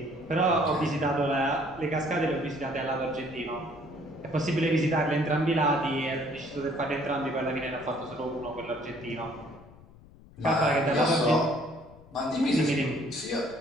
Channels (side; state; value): left; noise; rumble, 23 dB below the sound